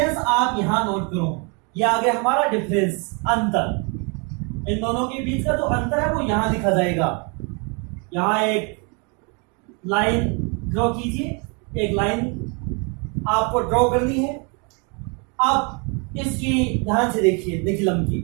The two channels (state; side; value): quieter; left; 34.4 dB